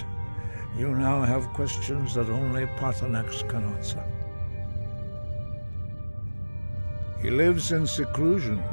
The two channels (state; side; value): inverted; both; correlation -1.00